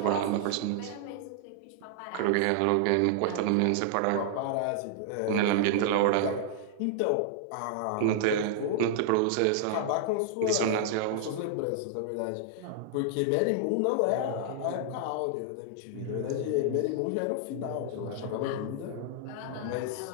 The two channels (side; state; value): both; different; correlation -0.01